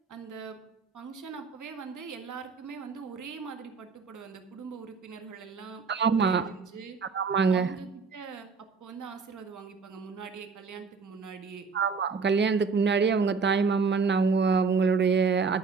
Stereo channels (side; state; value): left; quieter; 5.0 dB